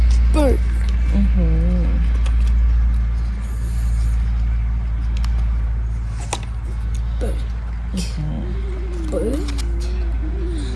Bird. Bird. Bird.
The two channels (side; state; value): both; identical; correlation 1.00